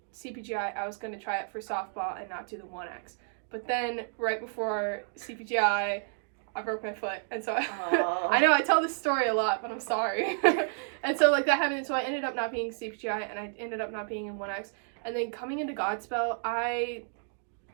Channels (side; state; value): left; silent; digital silence